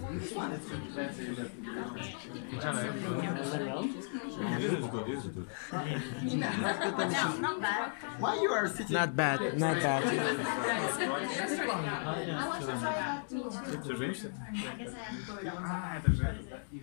Why you are sitting? Not bad, not bad.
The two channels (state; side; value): silent; right; digital silence